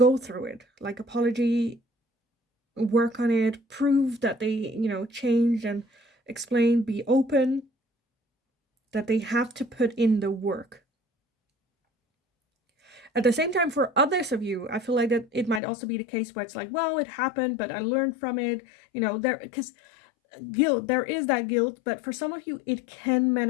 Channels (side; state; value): right; drops out; at 15.6 s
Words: through it. Like, apology, work on it, prove that they, changed, and explain, be open, that they have to put in the work. At the same time, for others of you, I feel like that it might also be the case where it's like, well, it happened, but I learned from it, because guilt, there is that guilt, but for some of you, it can